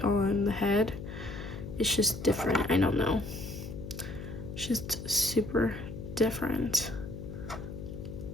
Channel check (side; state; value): left; noise; hum, 9 dB below the sound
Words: on the head. It's just different. I don't know. It's just super different.